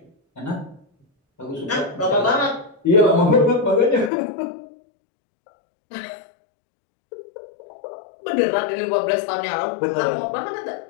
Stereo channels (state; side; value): drops out; right; at 4.1 s